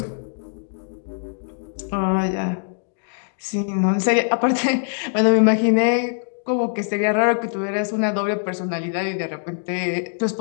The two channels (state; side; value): silent; right; digital silence